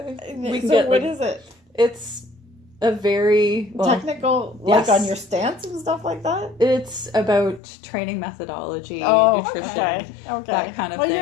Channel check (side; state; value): right; drops out; at 7.6 s